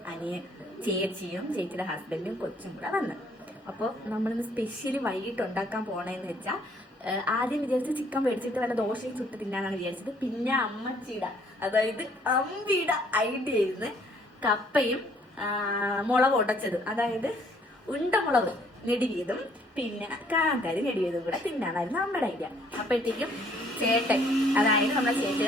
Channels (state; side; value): normal; both; correlation 0.63